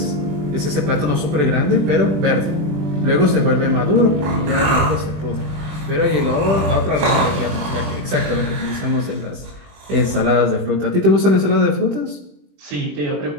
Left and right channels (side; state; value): left; late; 20 ms